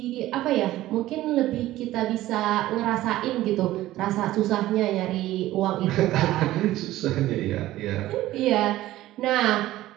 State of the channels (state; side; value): quieter; left; 15.4 dB